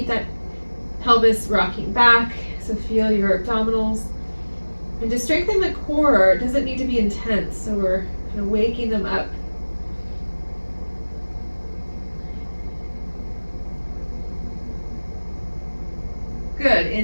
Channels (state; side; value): inverted; both; correlation -1.00